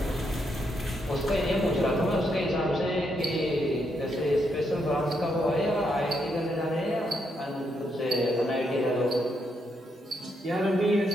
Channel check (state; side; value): normal; both; correlation 0.78